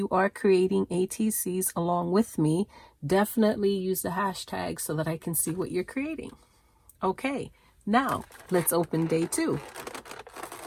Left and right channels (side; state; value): both; identical; correlation 1.00